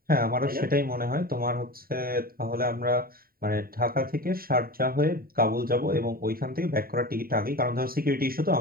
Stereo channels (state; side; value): late; left; 0.43 ms